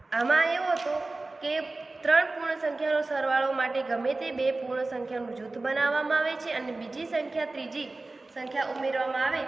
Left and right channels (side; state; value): left; quieter; 3.2 dB